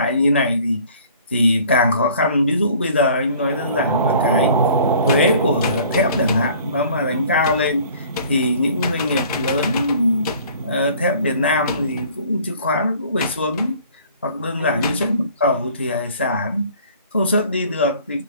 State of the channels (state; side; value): inverted; both; correlation -0.52